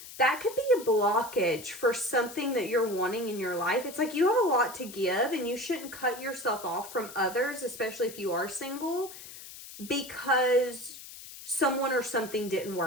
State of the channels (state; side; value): noise; left; hiss, 14 dB below the sound